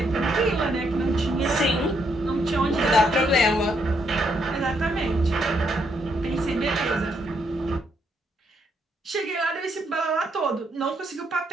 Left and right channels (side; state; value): both; normal; correlation 0.75